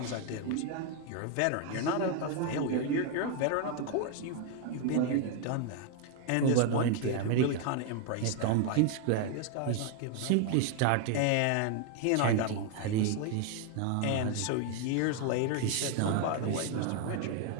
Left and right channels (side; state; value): both; different; correlation 0.01